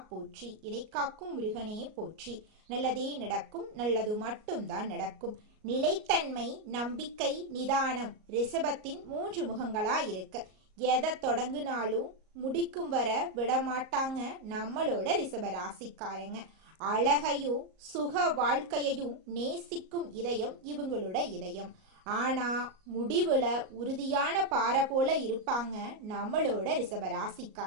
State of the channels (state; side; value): late; left; 38 ms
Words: போற்றி, இறைக்காக்கும் முருகனே போற்றி. நல்லதே நடக்கும், நல்லது மட்டும்தான் நடக்கும். நிலைத்தன்மை, நம்பிக்கை, நிதானம் ரிஷபத்தின் 3 முகங்களா இருக்கு. எதை தொடங்குனாலும் முடிக்கும் வர விடமாட்டாங்க நம்மளோட ரிஷபராசிக்காரங்க. அழகையும் சுக வாழ்க்கையையும் நேசிக்கும் இதயம் இவங்களோட இதயம். ஆனா முடிவுல உறுதியான பாறை போல இருப்பாங்க நம்மளோட